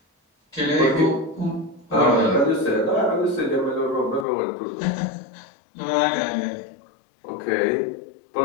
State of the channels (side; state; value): right; drops out; at 4.2 s